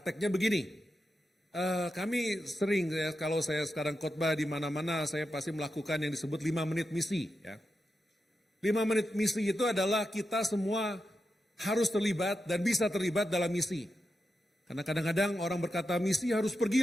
begini. Kami sering ya, kalau saya sekarang khotbah di mana-mana, saya pasti melakukan yang disebut 5 menit misi ya. 5 menit misi itu adalah kita semua harus terlibat dan bisa terlibat dalam misi. Karena kadang-kadang orang berkata misi harus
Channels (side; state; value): both; normal; correlation 0.88